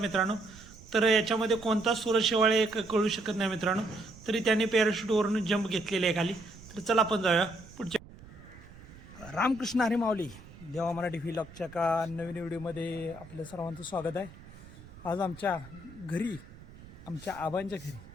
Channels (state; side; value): noise; right; rumble, 19 dB below the sound